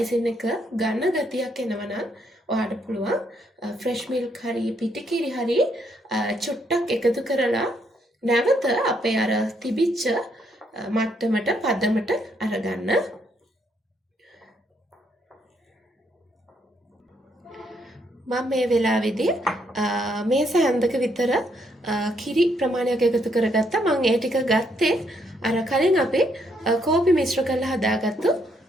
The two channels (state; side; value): normal; both; correlation 0.73